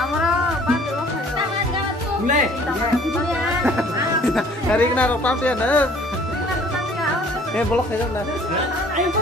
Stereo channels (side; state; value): both; normal; correlation 0.54